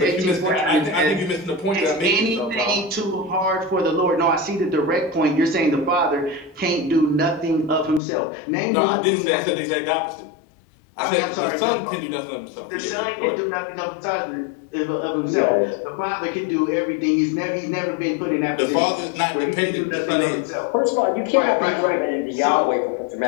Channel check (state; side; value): drops out; right; at 8.0 s